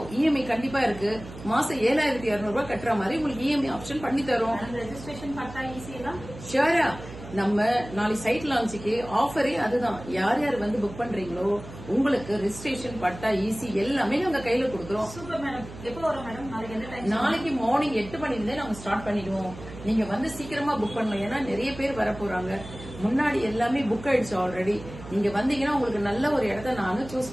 இஎம்ஐ கண்டிப்பா இருக்கு. மாசம் 7,200 ரூபாய் கட்டுற மாதிரி உங்களுக்கு இஎம்ஐ ஆப்ஷன் பண்ணி தரோம். ரெஜிஸ்ட்ரேஷன் பட்டா ஈஸியா? ஷியரா. நம்ம நாளைக்கு சைட் லான்ச்சுக்கு ஆஃபரே அதுதான். யார் யார் வந்து புக் பண்றீங்களோ உங்களுக்கு ரெஜிஸ்ட்ரேஷன் பட்டா ஈஸி எல்லாமே உங்க கையில கொடுக்குறோம். Super madam. எப்போ வரும் மேடம்? நாளைக்கு எந்த டைம்? நாளைக்கு மார்னிங் 8 மணில நாங்க ஸ்டார்ட் பண்ணிடுவோம். நீங்க வந்து சீக்கிரமா புக் பண்ணலாம். ஏன்னா நிறைய பேர் வர போறாங்க. முன்னாடி எல்லாமே புக் ஆயிடுச்சு ஆல்ரெடி. நீங்க வந்தீங்கன்னா உங்களுக்கு நல்ல ஒரு இடத்த நானும் சூஸ்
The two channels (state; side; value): noise; right; hum, 15 dB below the sound